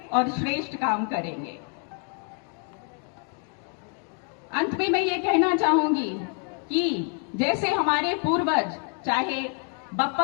और श्रेष्ठ काम करेंगे। अंत में मैं ये कहना चाहूंगी कि जैसे हमारे पूर्वज, चाहे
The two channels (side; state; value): right; quieter; 39.7 dB